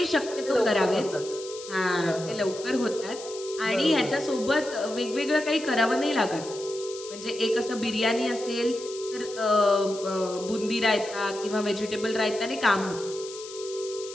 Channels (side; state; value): left; noise; hiss, 14 dB below the sound